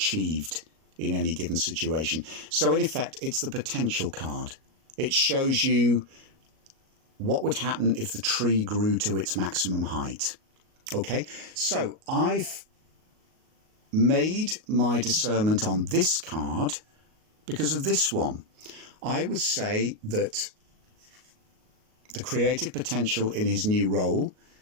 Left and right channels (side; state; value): left; late; 38 ms